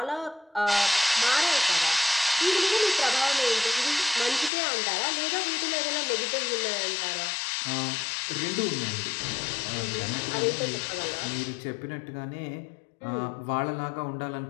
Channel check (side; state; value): right; drops out; at 4.5 s